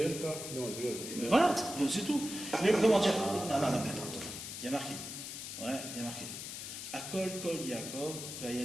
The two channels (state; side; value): noise; left; hiss, 8 dB below the sound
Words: pas. Non, Mais voilà, c'est tout. Mais comment dire? Non, attends. Il y a marqué. Ouais, il y a marqué. Akol kol Yaakov,